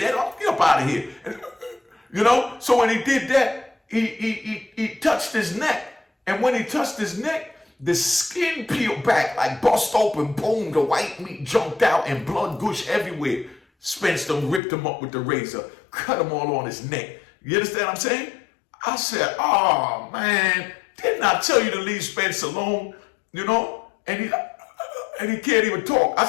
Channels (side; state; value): right; drops out; at 14.6 s